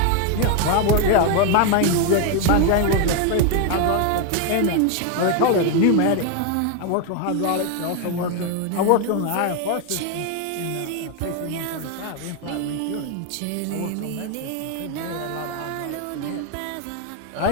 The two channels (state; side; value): different; both; correlation 0.01